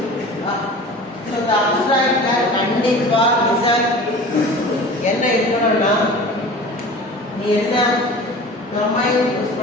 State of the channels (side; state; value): both; normal; correlation 0.39